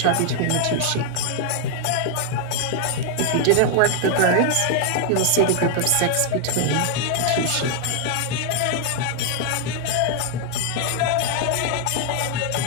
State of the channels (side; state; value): both; different; correlation 0.00